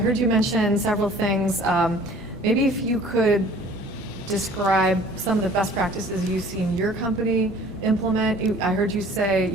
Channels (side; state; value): both; normal; correlation 0.50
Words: you mention several things. Maybe if you could describe some of the best practices you've seen your company implement. I heard you say,